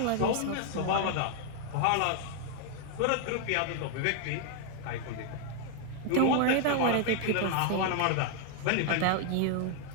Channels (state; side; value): different; both; correlation 0.01